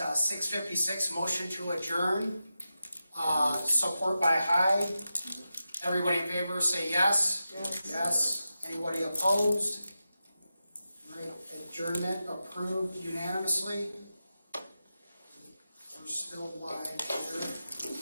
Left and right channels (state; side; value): inverted; both; correlation -0.91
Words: motion to adjourn. Support by Hyde. Everybody in favor say yes. Yes. Yes. Anybody opposed? Right, adjournment approved unanimously. We're still live here.